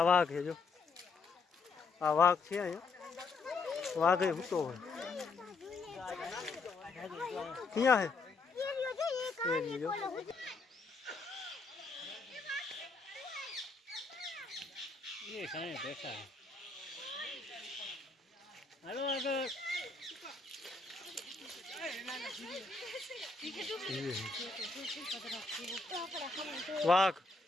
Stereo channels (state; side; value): quieter; right; 4.0 dB